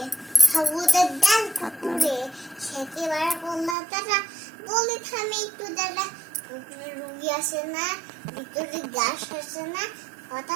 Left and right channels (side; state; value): left; drops out; at 3.8 s